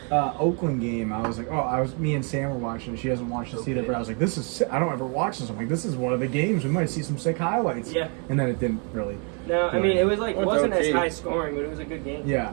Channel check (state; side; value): quieter; left; 37.0 dB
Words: job. Oakland game, I was like, me and Sam were watching. She hasn't watched this either, but I was like, this is sick. I don't ever watch this. I'm like, this is one of the games. We might see some sick highlights. Yeah. And then it didn't really. No, I mean it was like Well, wasn't as okay. high scoring, but it was a good game. Yeah,